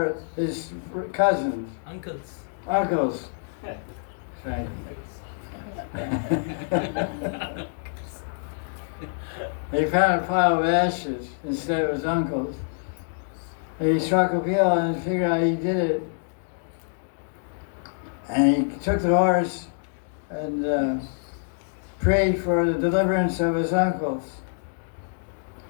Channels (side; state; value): right; silent; digital silence